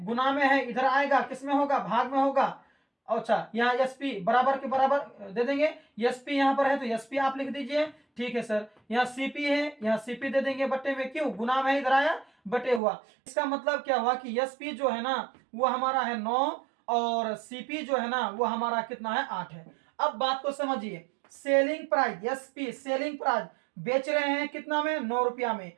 गुना में है, इधर आएगा किसमें होगा, भाग में होगा। अच्छा, यहाँ एसपी बराबर के बराबर दे देंगे, एसपी यहाँ पर है तो एसपी आप लिख दीजिए। ठीक है सर, यहाँ सीपी है, यहाँ सीपी दे देंगे बट्टे में, क्यों, गुना में इधर आया बटे हुआ। इसका मतलब क्या हुआ कि एसपी जो है ना वो हमारा है 9 और सीपी जो है ना वो हमारा कितना है, 8 है। अब बात को समझिए, selling price, SP selling price बेच रहे हैं कितना में, 9 रुपया में।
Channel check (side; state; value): left; drops out; at 12.8 s